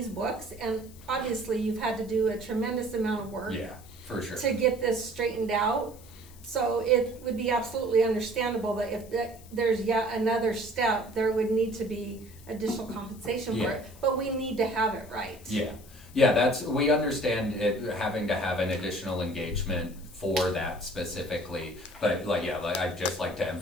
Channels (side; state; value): left; noise; hiss, 22 dB below the sound